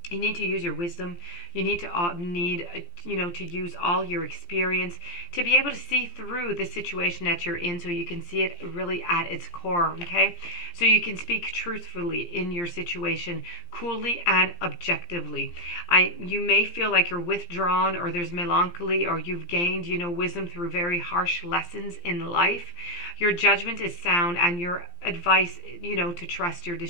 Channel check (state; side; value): late; right; 17 ms